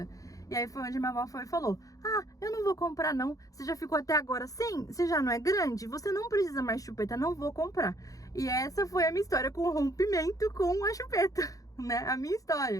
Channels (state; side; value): late; right; 0.17 ms